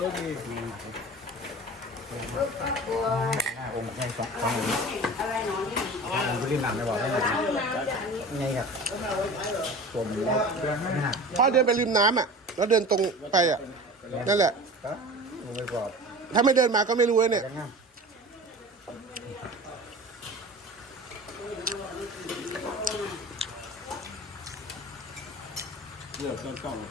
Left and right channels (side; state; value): both; normal; correlation 0.36